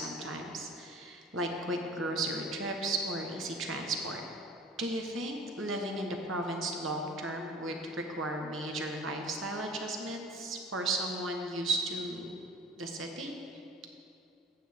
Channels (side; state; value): both; normal; correlation 0.43